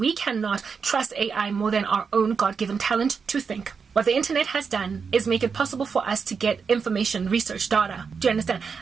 cannot trust AI more than our own God-given talent to think. What the internet has done is make it possible for us to get information, research, data. Do you understand?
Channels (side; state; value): left; quieter; 5.7 dB